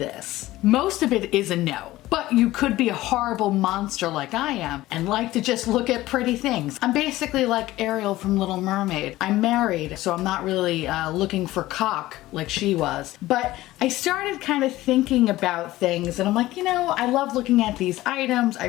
Most of it is a no. But you could be a horrible monster like I am and like to just look at pretty things. I'm basically like Ariel from Little Mermaid. I'm married, so I'm not really looking for cock like she was. But I started kind of thinking about things and I'm like, you know, I love looking at these items, I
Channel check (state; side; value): quieter; right; 16.8 dB